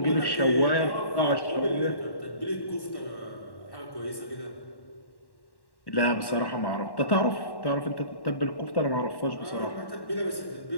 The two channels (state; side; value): late; right; 1.1 ms